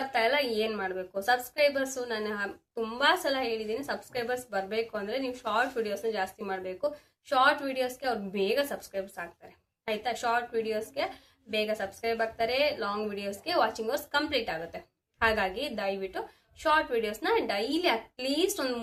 ಇಲ್ಲ, ಏನು ಮಾಡಬೇಕು. ಸಬ್ಸ್ಕ್ರೈಬರ್ಸು ನಾನು ತುಂಬ ಸಲ ಹೇಳಿದ್ದೀನಿ, ಸಬ್ಸ್ಕ್ರೈಬರ್ಸ್ ಬರಬೇಕು ಅಂದರೆ ನೀವು ಶಾರ್ಟ್ ವಿಡಿಯೋಸ್ನ ಜಾಸ್ತಿ ಮಾಡಬೇಕು. ಶಾರ್ಟ್ ವಿಡಿಯೋಸ್ಗೆ ಅವ್ರು ಬೇಗ ಸಬ್ಸ್ಕ್ರೈಬರ್ಸ್ ಆಗ್ತಾರೆ, ಆಯಿತಾ. ಶಾರ್ಟ್ ವಿಡಿಯೋಸ್ಗೆ ಬೇಗ ಸಬ್ಸ್ಕ್ರೈಬ್ ಆಗ್ತಾರೆ, ಲಾಂಗ್ ವಿಡಿಯೋಸ್ಗೆ ವಾಚಿಂಗ್ ಅವರ್ಸ್ ಕಂಪ್ಲೀಟ್ ಆಗುತ್ತೆ. ಹಾಗಾಗಿ ದಯವಿಟ್ಟು ಶಾರ್ಟ್ ವಿಡಿಯೋಸ್ನ ಡೈಲಿ ಅಟ್ಲೀಸ್ಟ್ ಒಂದು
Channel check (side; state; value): both; identical; correlation 1.00